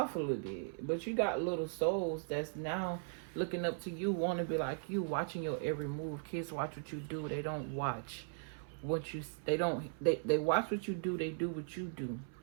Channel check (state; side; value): silent; left; 52 dB below the other